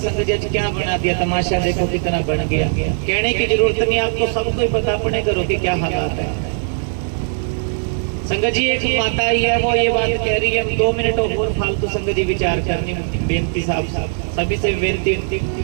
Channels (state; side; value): silent; left; digital silence